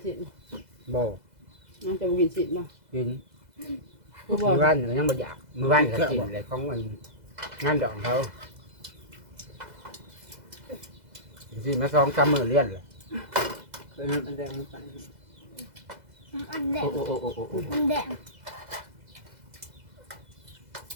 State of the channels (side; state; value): left; late; 2.0 ms